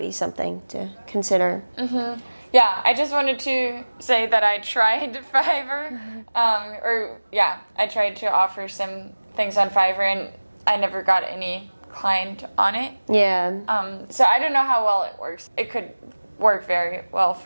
something to consider. Yeah, I just wanted to say that I tried Fiverr, I tried to offer some things on Fiverr, and I never got any client on it. Yeah. So I don't know how well it works. It could work very well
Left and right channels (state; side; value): inverted; both; correlation -1.00